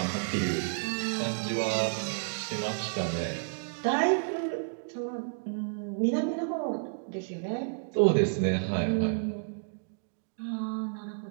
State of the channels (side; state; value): left; silent; digital silence